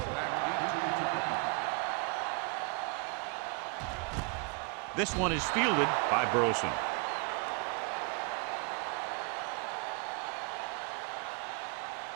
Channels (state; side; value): quieter; left; 32.3 dB